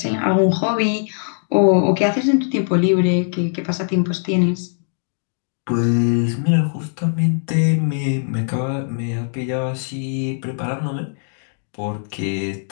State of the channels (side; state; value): right; silent; digital silence